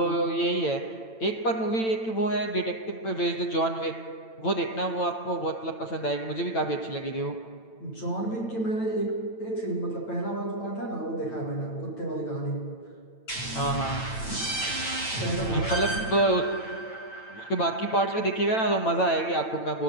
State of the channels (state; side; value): late; right; 9.0 ms